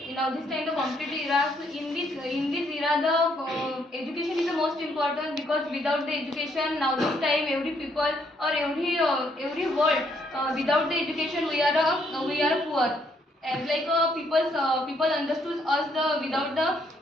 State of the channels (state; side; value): normal; both; correlation 0.71